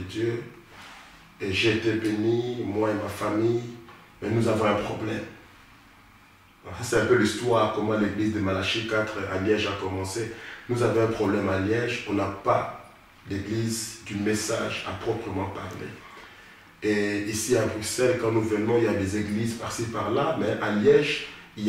Et j'ai été béni, moi et ma famille, mais nous avons un problème. C'est un peu l'histoire, comment l'église de Malachie 4 à Liège a commencé. Nous avons un problème à Liège, on n'a pas d'église du message à proprement parler. Et ici à Bruxelles, quand nous venons, il y a des églises par-ci par-là, mais à Liège, il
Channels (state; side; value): identical; both; correlation 1.00